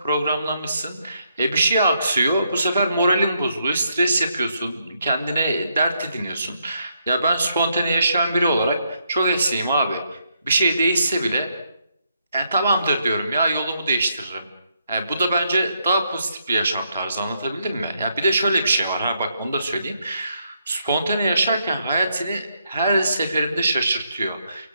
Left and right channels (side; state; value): both; inverted; correlation -0.77